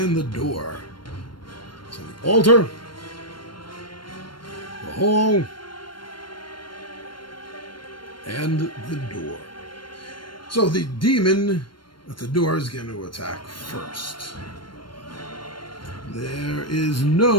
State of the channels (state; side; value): late; right; 0.72 ms